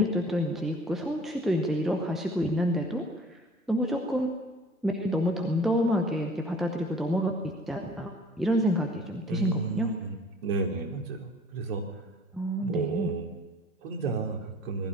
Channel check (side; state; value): both; normal; correlation 0.49